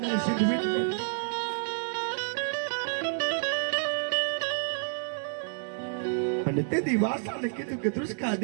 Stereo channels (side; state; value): left; silent; digital silence